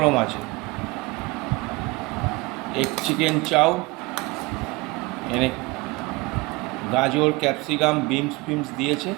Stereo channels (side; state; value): left; quieter; 23.8 dB